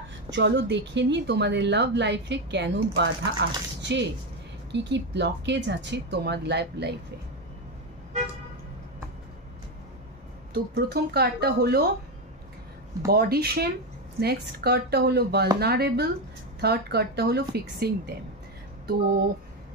চলো দেখে নিই তোমাদের লাভ লাইফে কেন বাধা আসছে, কি কি ব্লকেজ আছে তোমার লাইফে। তো প্রথম কার্ডটা হলো বডি শেম, নেক্সট কার্ডটা হলো ভালনারেবল, থার্ড কার্ডটা হলো ফিক্সিং দেম। তো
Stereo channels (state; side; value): normal; both; correlation 0.11